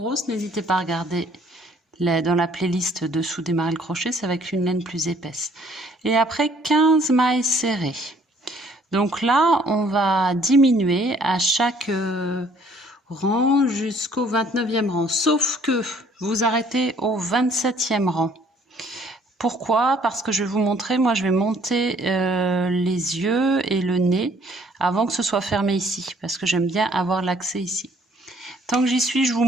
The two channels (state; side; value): normal; both; correlation 0.60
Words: n'hésitez pas à regarder dans la playlist dessous démarrer le crochet, c'est avec une laine plus épaisse. Et après 15 mailles serrées. Donc là, on va diminuer à chaque rang jusqu'au 29e rang. Sauf que vous arrêtez au 27e rang. Pourquoi? Parce que je vais vous montrer, moi je vais monter les yeux et le nez avant que ce soit fermé ici. Parce que j'aime bien avoir l'accès ici. Tant que j'y suis, je vous